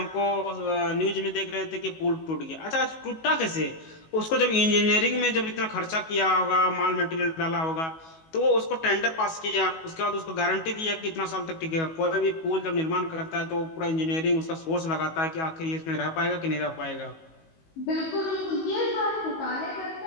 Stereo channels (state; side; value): late; right; 19 ms